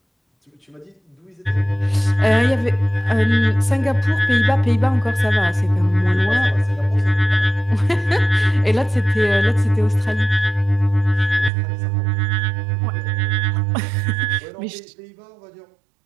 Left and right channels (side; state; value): left; drops out; at 11.5 s